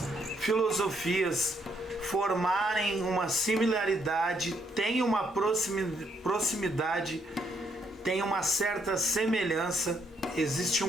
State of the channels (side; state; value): both; normal; correlation 0.73